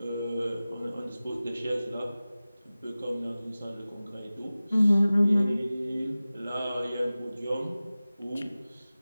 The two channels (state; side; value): inverted; both; correlation -0.97